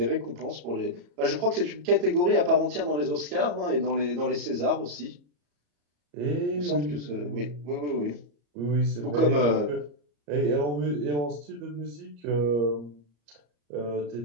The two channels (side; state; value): left; late; 34 ms